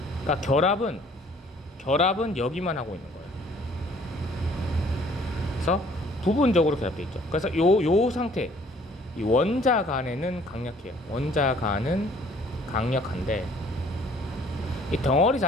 그러니까 결합은 여기만 하고 있는 거예요. 그래서 부분적으로 결합되어 있죠. 그래서 요 상태, 이 원자 간에는 강력해요. 원자 간은 강력한데 이 덩어리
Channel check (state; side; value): normal; both; correlation 0.57